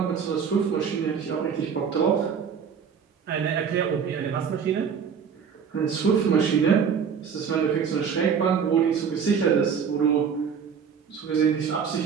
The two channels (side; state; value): left; quieter; 6.8 dB